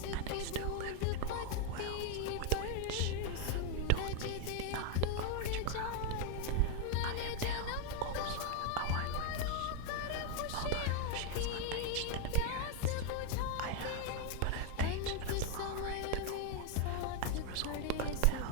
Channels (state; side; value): different; both; correlation 0.01